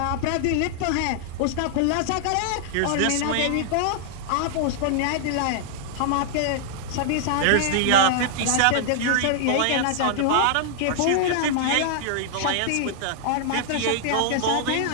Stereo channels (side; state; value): both; different; correlation -0.01